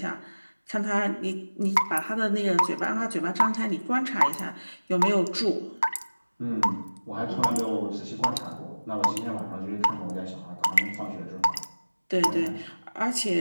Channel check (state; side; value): inverted; both; correlation -1.00